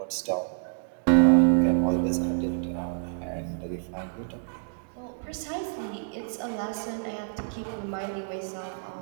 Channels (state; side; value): silent; left; digital silence